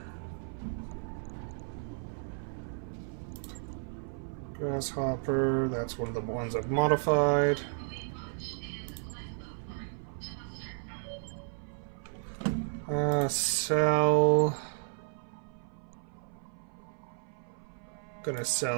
Grasshopper, that's one of the ones I've modified. Sell. Gonna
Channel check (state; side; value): silent; left; 56 dB below the other